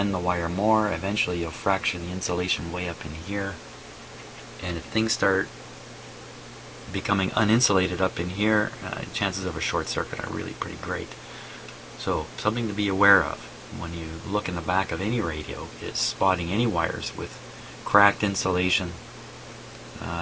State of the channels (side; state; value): both; identical; correlation 1.00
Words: the wire more. Eventually you'll fracture the insulation way up in here. And if things start becoming uninsulated up in here, chances of a short circuit are really pretty great. So something to be aware of when you look in the back of any radio is spotting any wires with cracked insulation,